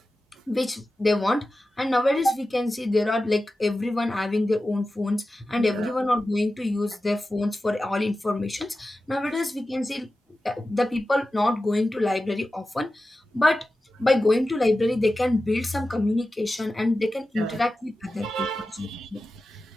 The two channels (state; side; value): normal; both; correlation 0.94